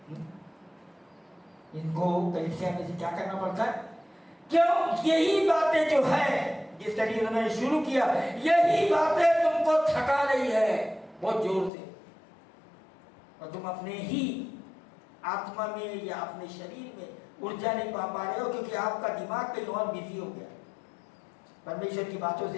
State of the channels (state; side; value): drops out; right; at 11.7 s